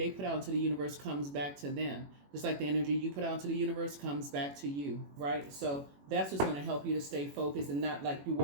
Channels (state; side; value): late; left; 21 ms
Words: put out into the universe comes back to them. Just like the energy you put out into the universe comes back to you, right? So that's what's going to help you to stay focused and not like you're